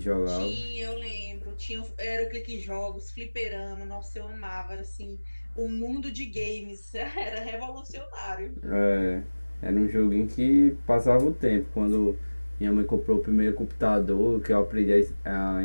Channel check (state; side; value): inverted; both; correlation -1.00